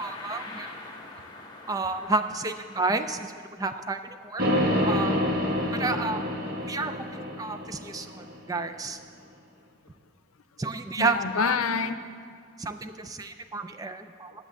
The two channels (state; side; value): normal; both; correlation 0.21